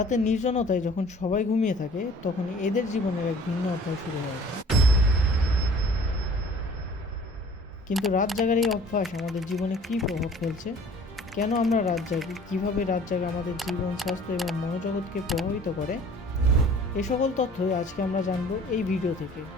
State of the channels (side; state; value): both; normal; correlation 0.50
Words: নির্জনতায় যখন সবাই ঘুমিয়ে থাকে, তখন এদের জীবনের এক ভিন্ন অধ্যায় শুরু হয়ে যায়। কিন্তু রাত জাগার এই অভ্যাস আমাদের জীবনে কী প্রভাব ফেলছে? কেন আমরা রাত জাগি? কীভাবে রাত জাগা আমাদের জীবন, স্বাস্থ্য এবং মনোজগৎকে প্রভাবিত করে? এ সকল তথ্যই আজকে আমরা জানবো এই ভিডিও থেকে।